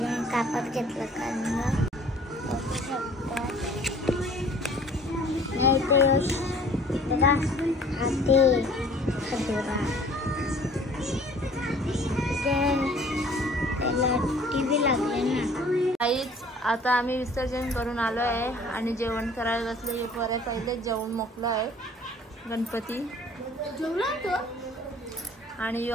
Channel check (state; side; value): normal; both; correlation 0.52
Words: कापड घेतलं कारण बघा हाती खजोरा त्याला टीव्ही लागले ना. काहीच आता आम्ही विसर्जन करून आलो आहे आणि जेवण करायला बसले. पहिले जेवण मोकलं आहे गणपती आणि यो